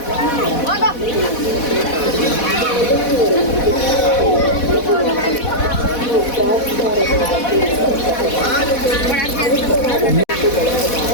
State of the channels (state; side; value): late; right; 4.1 ms